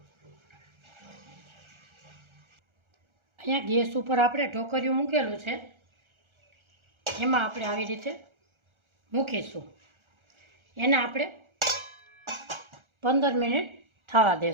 અહીંયા ગેસ ઉપર આપણે ઢોકળિયું મૂકેલું છે. એમાં આપણે આવી રીતે મૂકીશું. એને આપણે 15 મિનિટ થવા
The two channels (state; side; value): late; left; 1.4 ms